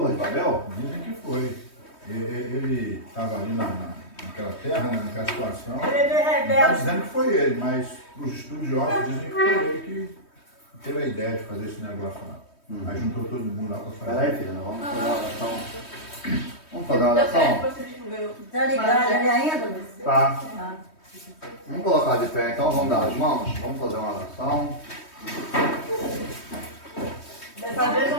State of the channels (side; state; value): right; late; 3.2 ms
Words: de Babel? Dizem que foi. Ele estava ali naquela terra, né? Naquela situação. ele é meio Não está rebelde. dizendo que foi ele, mas os estudiosos dizem que foi ele que teve a ideia de fazer esse negócio lá. Aí juntou todo mundo lá para fazer. Peraí, filha, nós vamos fazer uma oração. Vamos fazer uma oração? Está ligado ali ainda? Tá. Ah. Vamos colocar de pé então, vamos dar as mãos, vamos fazer uma oração. Dessa vez eu